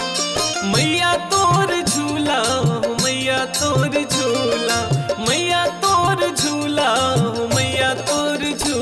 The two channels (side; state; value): both; identical; correlation 1.00